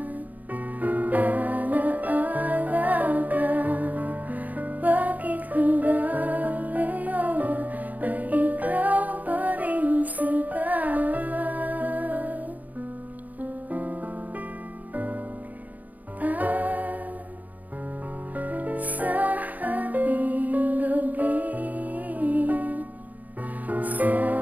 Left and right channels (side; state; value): left; late; 0.078 ms